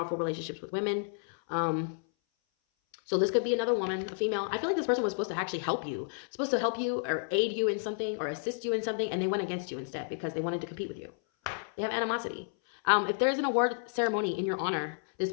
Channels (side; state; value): right; silent; 57 dB below the other